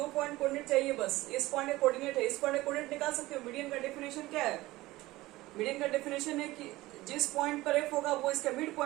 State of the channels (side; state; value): left; quieter; 18.6 dB